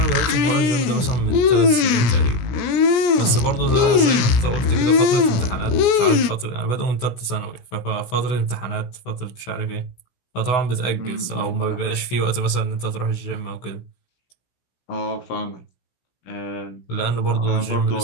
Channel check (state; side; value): late; right; 16 ms